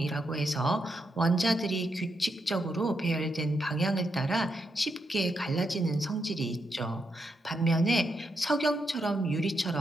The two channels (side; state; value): both; normal; correlation 0.82